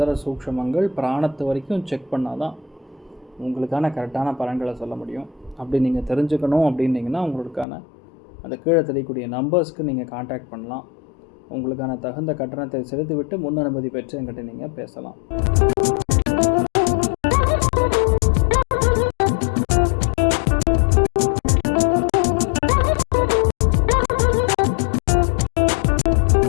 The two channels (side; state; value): right; drops out; at 7.7 s